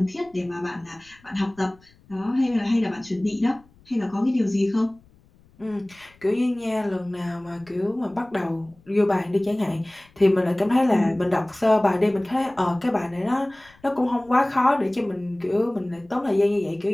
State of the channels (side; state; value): left; noise; rumble, 30 dB below the sound